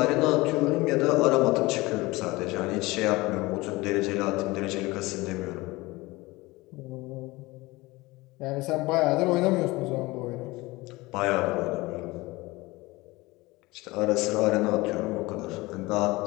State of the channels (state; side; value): quieter; right; 21.5 dB